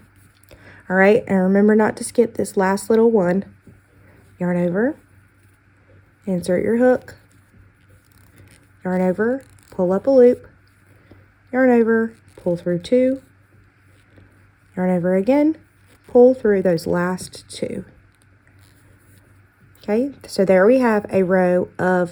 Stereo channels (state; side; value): identical; both; correlation 1.00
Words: All right, and remember not to skip this last little one. Yarn over, insert your hook. Yarn over, pull up a loop. Yarn over, pull through 2. Yarn over again, pull through those last 2. Okay, so there we have a row